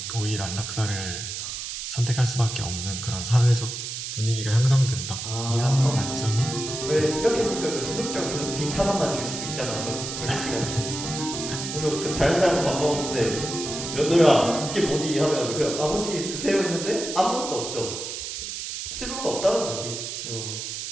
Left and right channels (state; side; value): noise; right; hiss, 6 dB below the sound